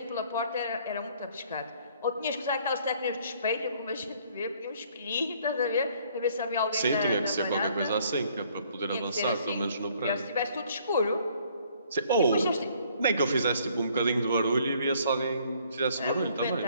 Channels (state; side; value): inverted; both; correlation -0.62